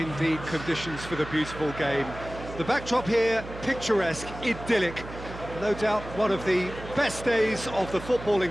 conditions for the beautiful game. The backdrop here, picturesque, idyllic. No doubt one of the best days of the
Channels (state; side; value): noise; right; hum, 12 dB below the sound